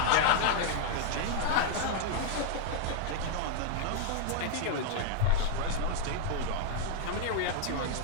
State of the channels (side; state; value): both; different; correlation 0.00